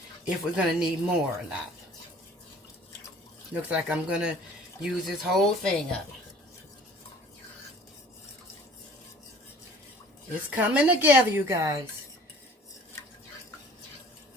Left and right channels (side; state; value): both; normal; correlation 0.51